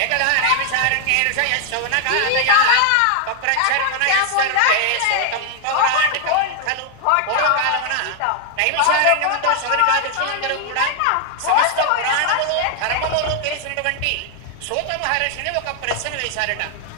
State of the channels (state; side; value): different; both; correlation 0.00